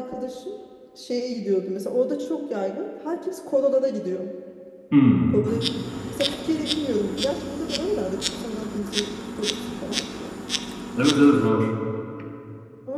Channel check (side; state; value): both; identical; correlation 1.00